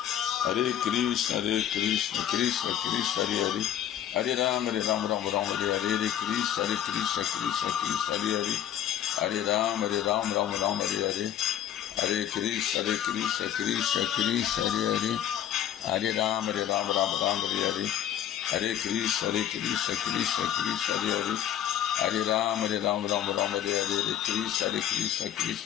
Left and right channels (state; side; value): quieter; right; 10.6 dB